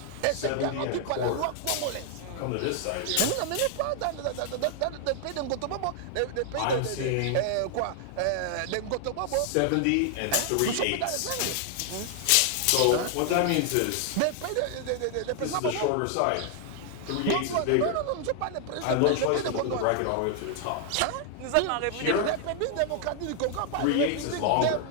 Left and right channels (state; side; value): different; both; correlation 0.00